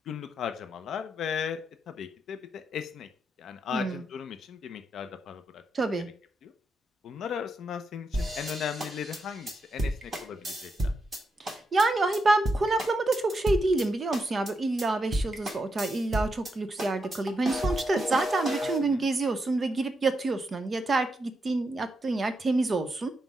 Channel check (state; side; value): normal; both; correlation 0.84